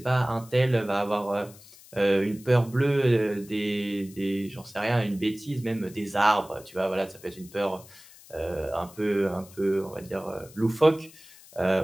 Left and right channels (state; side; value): noise; left; hiss, 22 dB below the sound